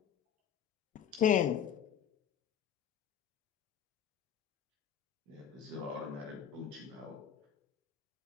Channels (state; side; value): quieter; right; 9.1 dB